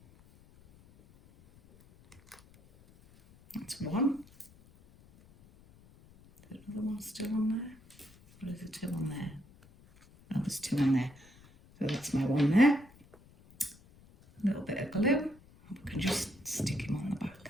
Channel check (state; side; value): noise; left; rumble, 25 dB below the sound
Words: one. Is there another one still on there? Or is there two on there? Oh, there's two on there. So that's my one there. A little bit of glue. We can just stick him on the